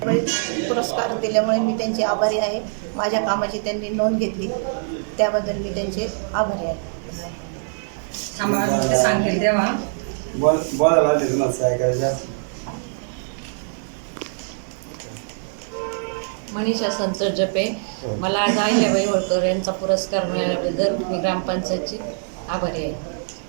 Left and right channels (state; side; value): silent; left; 57 dB below the other